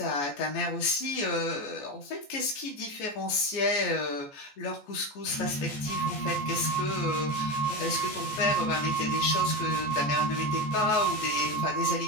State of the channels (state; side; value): late; right; 14 ms